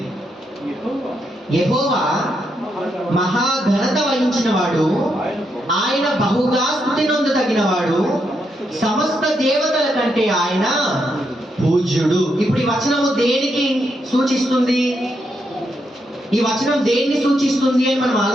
యెహోవా మహాఘనత వహించిన వాడు, ఆయన బహుగా స్తుతి నొందదగిన వాడు, సమస్త దేవతల కంటే ఆయన పూజ్యుడు. ఇప్పుడు ఈ వచనము దేనికి సూచిస్తుంది? ఈ వచనం దేన్ని సూచిస్తుంది అని మనం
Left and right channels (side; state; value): both; normal; correlation 0.80